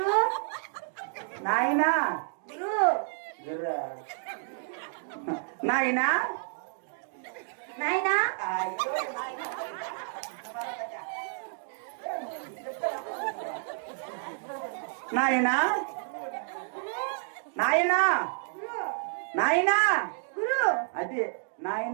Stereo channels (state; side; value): silent; left; digital silence